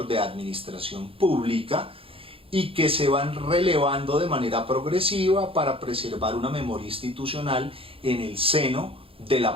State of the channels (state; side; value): late; left; 0.27 ms